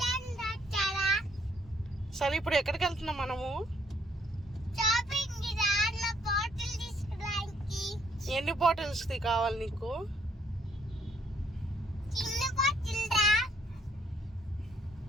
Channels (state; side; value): normal; both; correlation 0.67